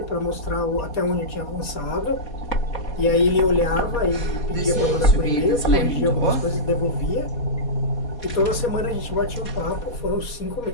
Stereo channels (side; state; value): right; late; 4.2 ms